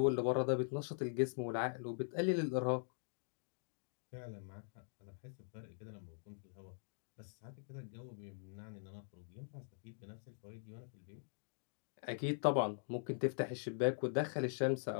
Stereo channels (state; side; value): silent; right; digital silence